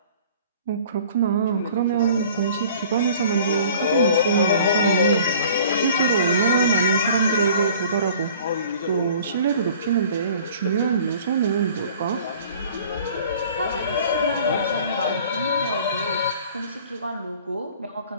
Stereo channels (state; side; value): inverted; both; correlation -0.49